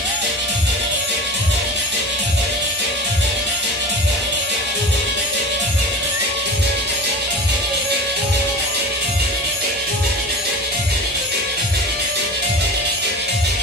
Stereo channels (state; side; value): normal; both; correlation 0.33